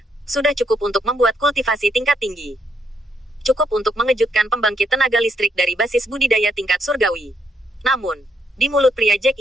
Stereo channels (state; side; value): normal; both; correlation 0.75